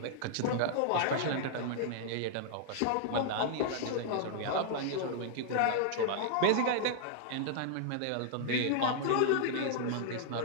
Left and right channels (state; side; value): different; both; correlation -0.01